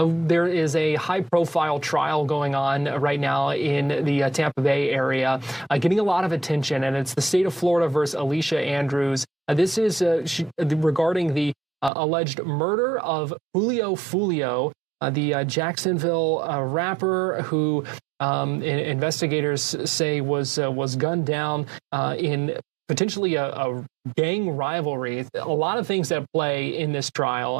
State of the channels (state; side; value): drops out; left; at 11.9 s